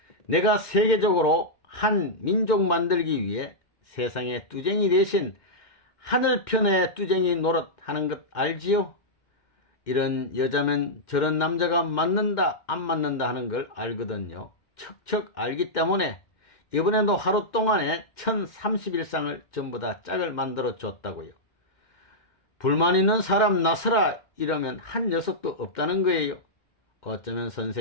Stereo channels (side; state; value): right; late; 2.1 ms